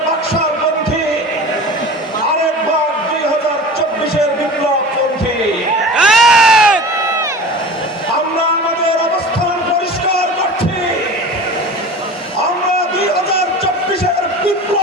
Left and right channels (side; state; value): both; normal; correlation 0.36